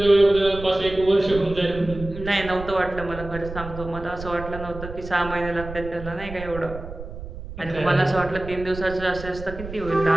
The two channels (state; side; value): noise; right; rumble, 11 dB below the sound